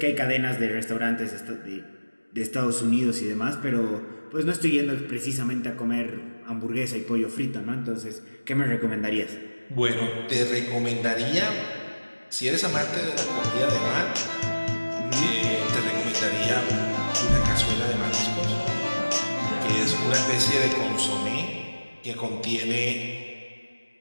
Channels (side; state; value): both; inverted; correlation -1.00